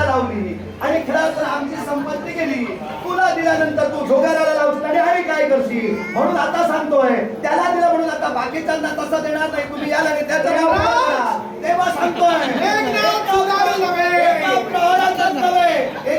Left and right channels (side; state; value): both; identical; correlation 1.00